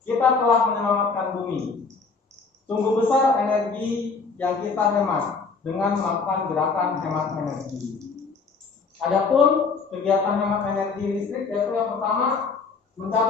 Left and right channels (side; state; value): right; quieter; 4.7 dB